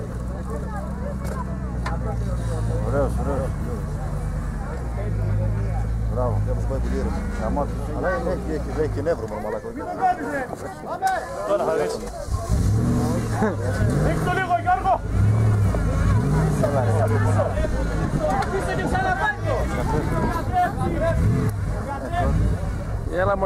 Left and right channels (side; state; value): both; identical; correlation 1.00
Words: Ωραίος, ωραίος. Μπράβο, και όπως πάει τη λίρα. Αλλά έχει και νεύρο μόνο μαλάκο. Τώρα θα ρίξει. Ρίξ' το λίγο Γιώργο! Αφήστε και ξαναπάνω! Έλα